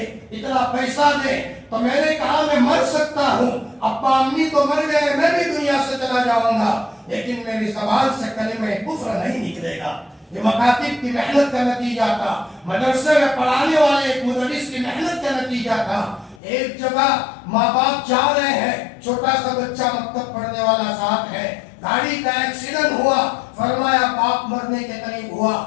اتنا پیسہ دے۔ تو میں نے کہا میں مر سکتا ہوں، ابا امی تو مر گئے، میں بھی دنیا سے چلا جاؤں گا، لیکن میری زبان سے کلمہ کفر نہیں نکلے گا۔ یہ مکاتب کی محنت کا نتیجہ تھا، مدرسے میں پڑھانے والے ایک مدرس کی محنت کا نتیجہ تھا۔ ایک جگہ ماں باپ جا رہے ہیں، چھوٹا سا بچہ مکتب پڑھنے والا ساتھ ہے، گاڑی کا ایکسیڈنٹ ہوا، فرمایا باپ مرنے کے قریب ہوا،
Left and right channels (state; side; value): drops out; right; at 16.4 s